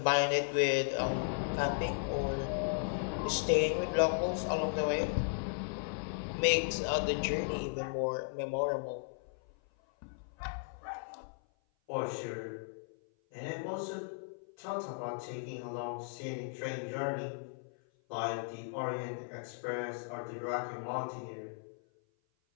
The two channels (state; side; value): silent; right; 54 dB below the other